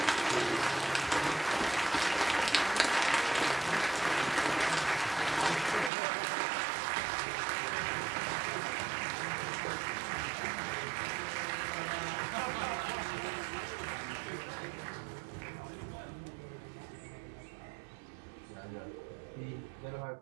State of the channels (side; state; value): left; drops out; at 5.9 s